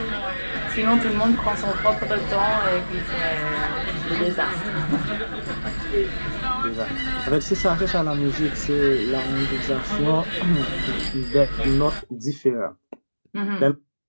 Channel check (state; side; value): inverted; both; correlation -1.00